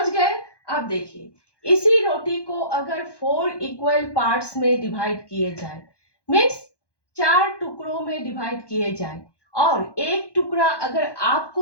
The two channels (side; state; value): right; late; 1.2 ms